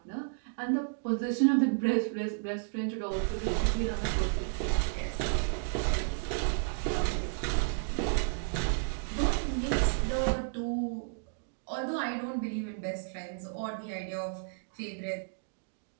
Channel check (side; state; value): left; silent; digital silence